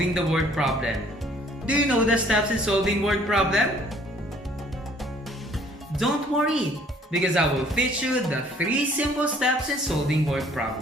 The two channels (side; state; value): both; normal; correlation 0.58